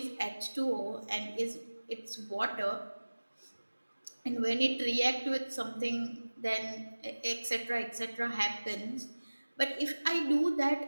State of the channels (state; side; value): inverted; both; correlation -1.00